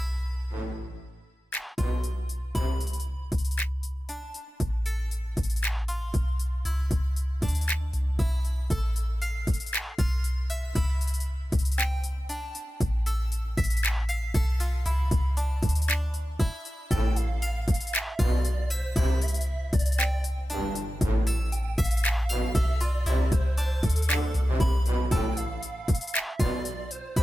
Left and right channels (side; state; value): both; normal; correlation 0.94